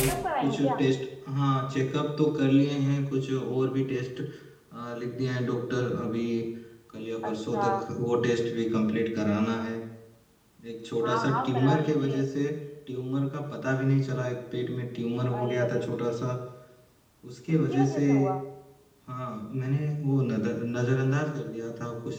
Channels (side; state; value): both; identical; correlation 1.00